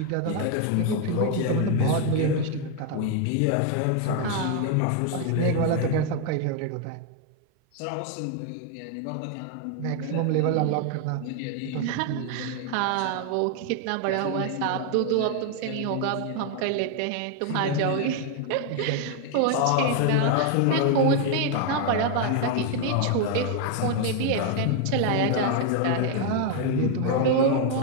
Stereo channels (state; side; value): different; both; correlation 0.01